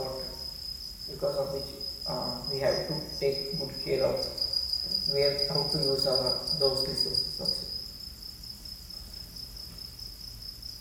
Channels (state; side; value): identical; both; correlation 1.00